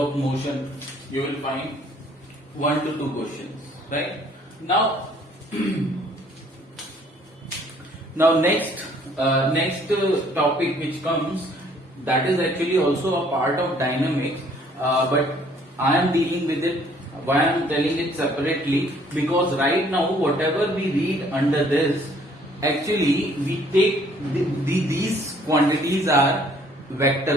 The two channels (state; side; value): normal; both; correlation 0.60